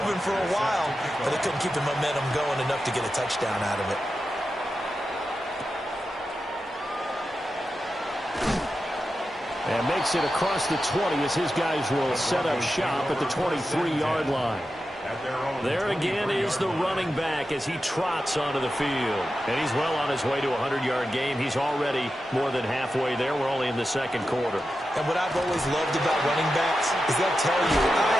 for a while, but they couldn't keep the momentum going enough to get a touchdown out of it. And makes it across the 20 as his guys will set up shop at the 23-yard line. There again is the running back as he trots onto the field. And he's well on his way to a 100-yard game. He's already more than halfway there. We're only in the 2nd quarter. And what I've always loved about running backs is they'll tell you, I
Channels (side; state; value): both; normal; correlation 0.91